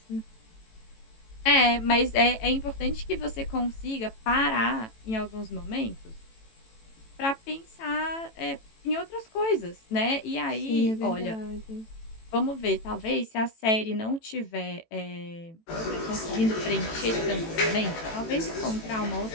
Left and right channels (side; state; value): right; late; 18 ms